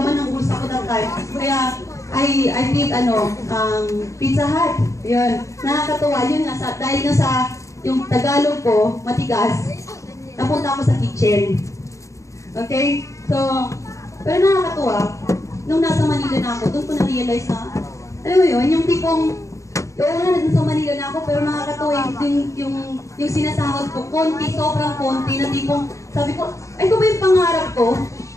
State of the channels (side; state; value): right; late; 0.15 ms